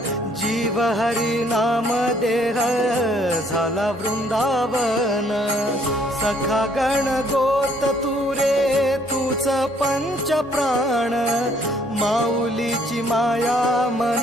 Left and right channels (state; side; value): noise; right; hum, 25 dB below the sound